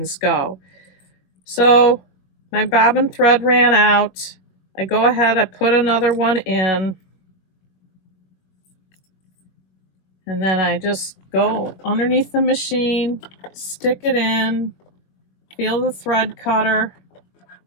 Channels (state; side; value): late; right; 21 ms